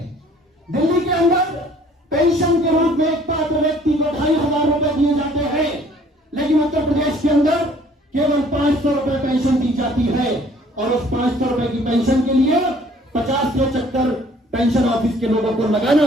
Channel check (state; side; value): normal; both; correlation 0.56